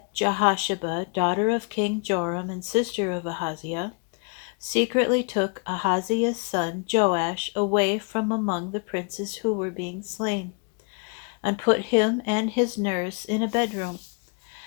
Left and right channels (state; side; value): quieter; right; 35.8 dB